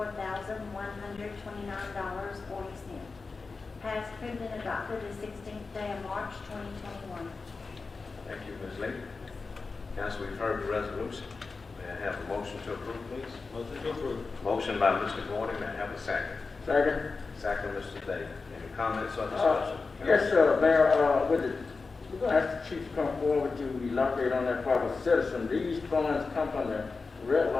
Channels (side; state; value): right; quieter; 4.2 dB